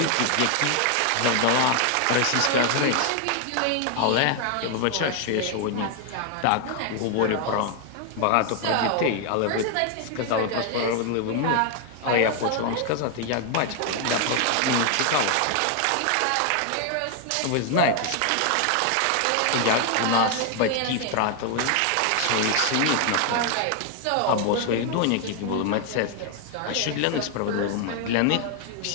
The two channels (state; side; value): different; both; correlation 0.00